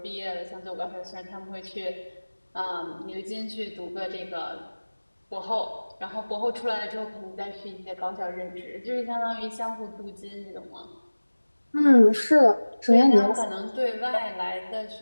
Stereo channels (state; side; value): inverted; both; correlation -1.00